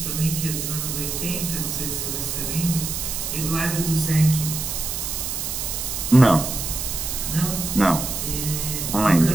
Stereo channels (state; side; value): noise; right; hiss, 3 dB below the sound